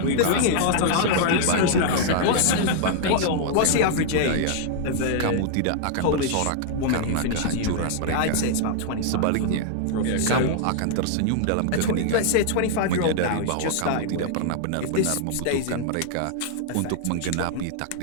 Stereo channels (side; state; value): both; different; correlation -0.01